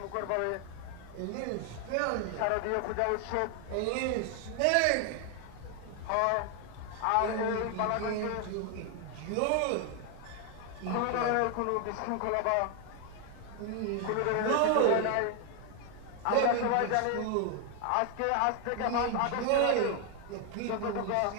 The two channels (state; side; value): different; both; correlation 0.01